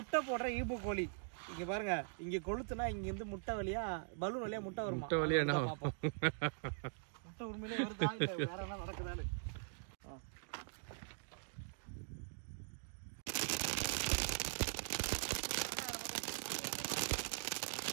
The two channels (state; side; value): silent; left; digital silence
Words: போடுற ஈபு கோழி. இங்க பாருங்க, இங்க கொளுத்துனா இங்க இருந்து முட்டை வழியா பலூன் வழியா முட்டை வரும். முட்டை வழியா என்ன முட்டை உண்மையிலே வருதா இல்ல வேற என்ன நடக்குதான்னு.